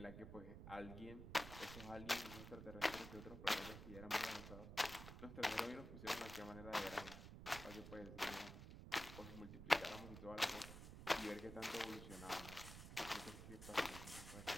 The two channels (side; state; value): right; noise; rumble, 10 dB below the sound